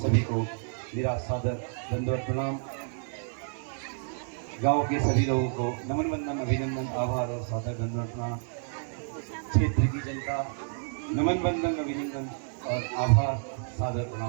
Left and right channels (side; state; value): left; silent; digital silence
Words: को मेरा सादर दंडवत प्रणाम। गांव के सभी लोगों को नमन वंदन, अभिनंदन, आभार और सादर दंडवत प्रणाम। क्षेत्र की जनता नमन वंदन, अभिनंदन और आभार, सादर